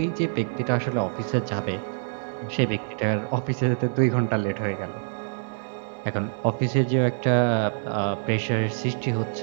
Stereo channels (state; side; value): silent; left; digital silence